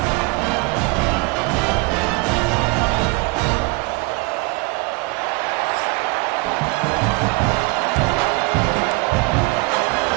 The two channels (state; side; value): quieter; left; 26.1 dB